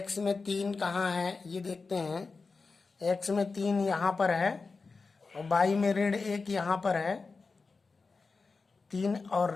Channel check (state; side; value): quieter; right; 4.3 dB